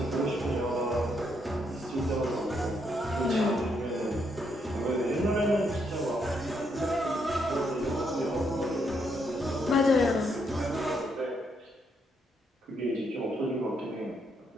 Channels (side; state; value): both; normal; correlation 0.76